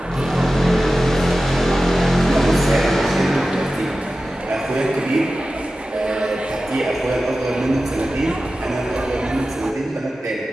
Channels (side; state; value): both; normal; correlation 0.94